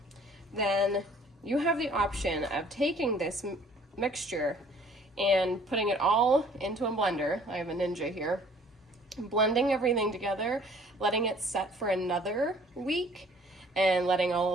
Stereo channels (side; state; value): both; normal; correlation 0.55